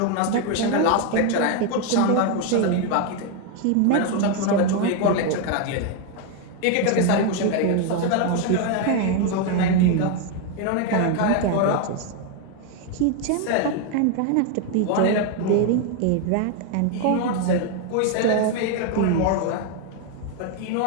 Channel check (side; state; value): both; different; correlation 0.01